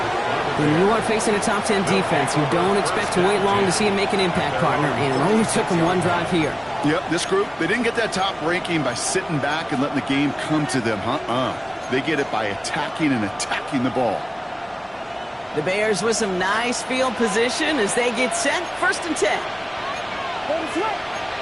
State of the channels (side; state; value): both; identical; correlation 1.00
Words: When you are facing a top 10 defense, you don't expect to wait long to see him make an impact, partner. And it only took him one drive here. Yep, this group, they didn't get that top ranking by sitting back and letting the game come to them. They get it by attacking the ball. The Bears with some nice field position as they get set. 1st and 10.